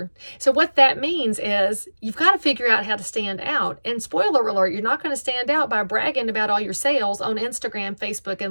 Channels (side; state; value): both; inverted; correlation -1.00